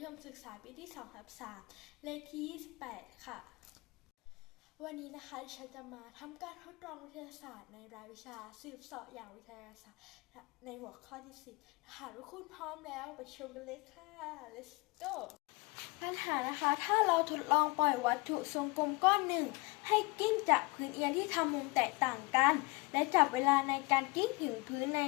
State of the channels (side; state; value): right; quieter; 26.9 dB